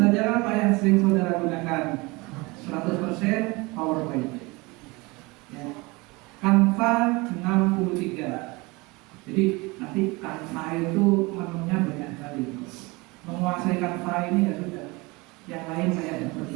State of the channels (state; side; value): quieter; left; 24.8 dB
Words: apa yang sering saudara gunakan? 100% PowerPoint. Ya. Canva 63. Jadi nanti Canva itu menunya banyak sekali. Menguasai Canva ini ya sudah, yang lain saya tidak